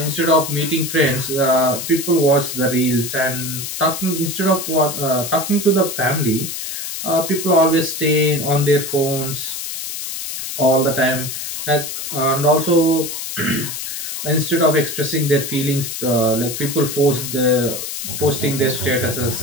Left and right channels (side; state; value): left; noise; hiss, 6 dB below the sound